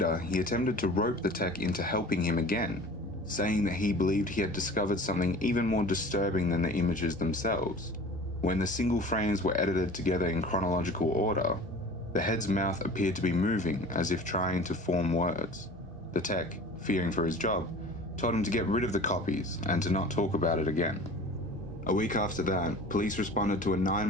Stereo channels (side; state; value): both; normal; correlation 0.41